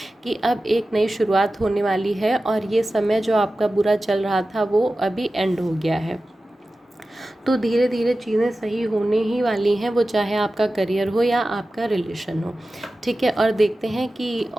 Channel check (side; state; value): both; normal; correlation 0.95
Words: कि अब एक नई शुरुआत होने वाली है, और ये समय जो आपका बुरा चल रहा था वो अभी एंड हो गया है। तो धीरे धीरे चीज़ें सही होने ही वाली हैं, वो चाहे आपका करियर हो या आपका रिलेशन हो, ठीक है। और देखते हैं कि